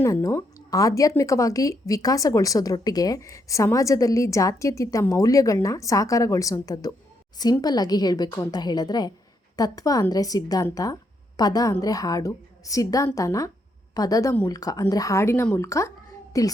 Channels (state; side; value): normal; both; correlation 0.77